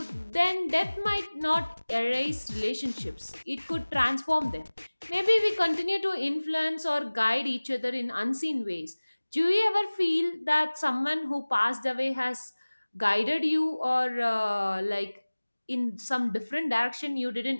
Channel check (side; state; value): both; inverted; correlation -1.00